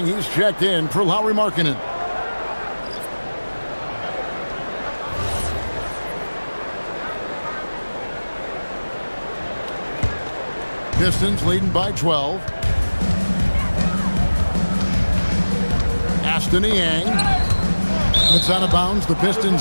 he's checked in for Lauri Markkanen. Pistons leading by 12. Aston Niang. It's out of bounds. The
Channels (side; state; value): both; inverted; correlation -1.00